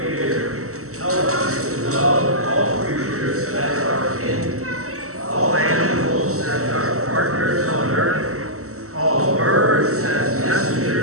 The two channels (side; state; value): left; late; 0.64 ms